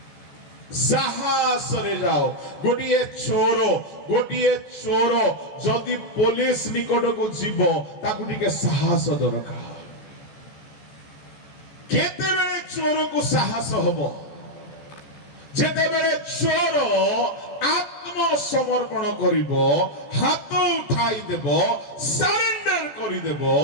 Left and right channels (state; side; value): late; right; 14 ms